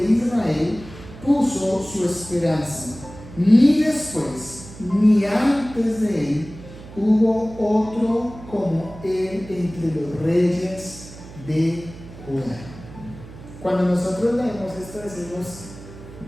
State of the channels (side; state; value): right; noise; hum, 16 dB below the sound